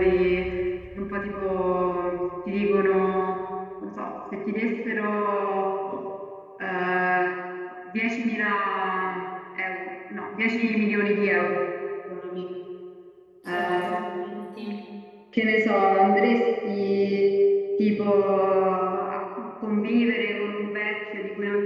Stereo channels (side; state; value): both; identical; correlation 1.00